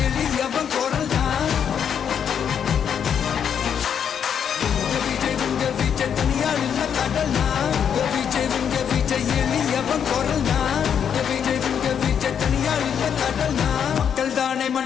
எளியவன் குரல்னா விஜய் உங்க விஜய் தனியாள் இல்ல கடல்னா விஜய் உங்க விஜய் எளியவன் குரல்னா விஜய் உங்க விஜய் தனியாள் இல்ல கடல்னா மக்கள் தானே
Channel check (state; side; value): quieter; right; 8.0 dB